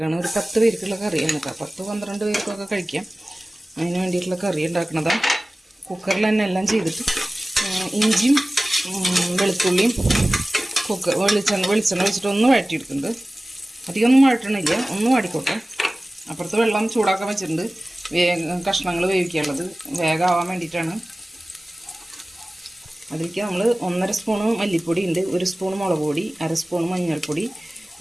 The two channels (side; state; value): both; normal; correlation 0.97